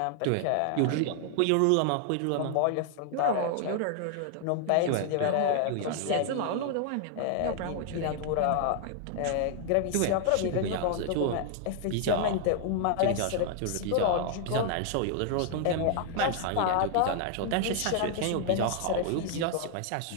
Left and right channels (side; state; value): both; different; correlation 0.00